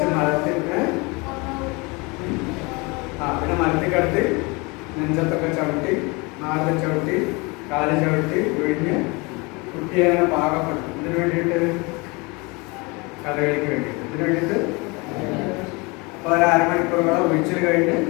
മരത്തിന് പിന്നെ മരത്തിൽ കിടത്തി നെഞ്ചത്തൊക്കെ ചവിട്ടി, നാലിൽ ചവിട്ടി, കാല് ചവിട്ടി ഒഴിഞ്ഞ് കുട്ടിയെ അങ്ങനെ പാകപ്പെടുത്തും. ഇതിനു വേണ്ടിയിട്ട് കഥകളിക്ക് വേണ്ടിയിട്ട് ഇതിനു വേണ്ടിയിട്ട് അപ്പോൾ ഒരു 1/2 മണിക്കൂറോളം ഒഴിച്ചിൽ കഴിഞ്ഞ്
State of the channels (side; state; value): right; quieter; 27.1 dB